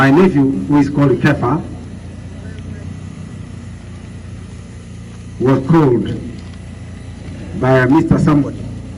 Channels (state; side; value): identical; both; correlation 1.00